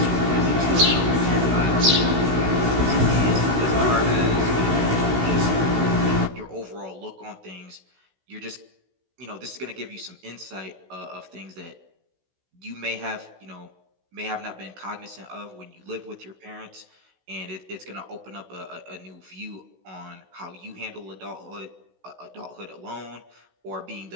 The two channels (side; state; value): left; late; 16 ms